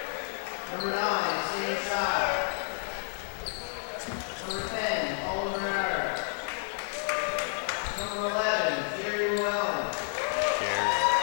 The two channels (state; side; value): silent; right; 58 dB below the other